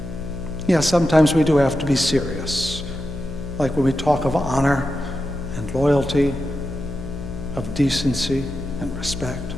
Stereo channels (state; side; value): noise; left; hum, 9 dB below the sound